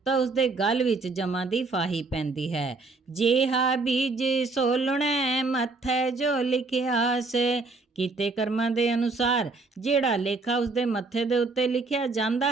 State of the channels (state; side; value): quieter; left; 3.7 dB